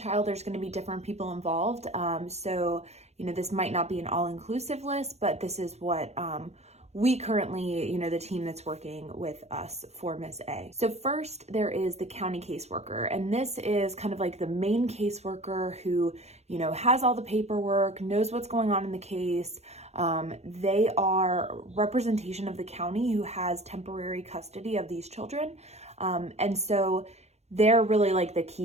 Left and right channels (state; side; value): late; left; 0.31 ms